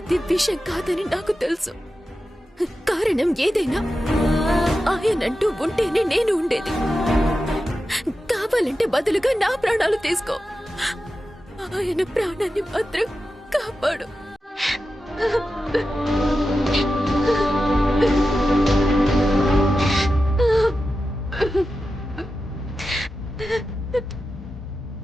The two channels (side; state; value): both; normal; correlation 0.92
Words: విషం కాదని నాకు తెలుసు. కారణం ఏదైనా ఆయనంటూ ఉంటేనే నేను ఉండేది. కావాలంటే బదులుగా నా ప్రాణాలు తీసుకో, ఆయన ప్రాణాన్ని మాత్రం కాపాడు.